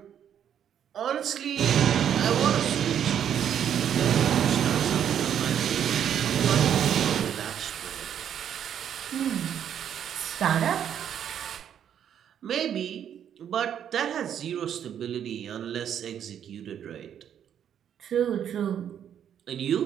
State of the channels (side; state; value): left; quieter; 9.2 dB